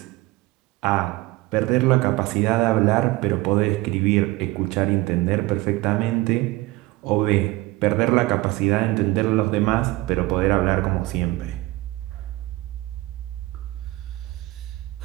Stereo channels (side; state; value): left; quieter; 19.6 dB